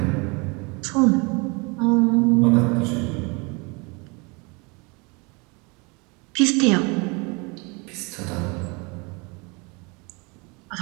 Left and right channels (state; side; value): quieter; left; 29.3 dB